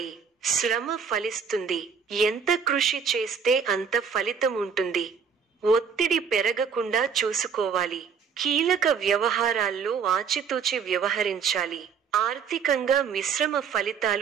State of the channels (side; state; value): left; quieter; 6.4 dB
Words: శ్రమ ఫలిస్తుంది. ఎంత కృషి చేస్తే అంత ఫలితం ఉంటుంది. ఒత్తిడి పెరగకుండా చూసుకోవాలి. కీలక వ్యవహారాల్లో ఆచితూచి వ్యవహరించాలి. ఆర్థికంగా మిశ్రమ